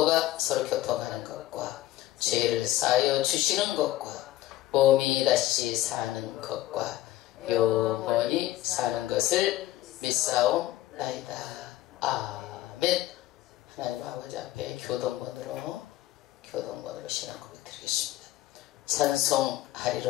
서로 교통하는 것과 죄를 사하여 주시는 것과 몸이 다시 사는 것과 영원히 사는 것을 믿사옵나이다. 아멘. 하나님 아버지 앞에 교동번으로 신앙 고백 드리겠습니다.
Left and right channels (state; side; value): quieter; right; 15.4 dB